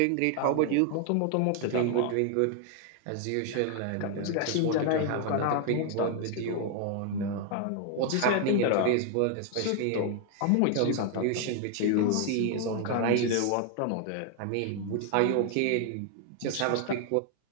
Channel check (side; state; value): both; different; correlation 0.00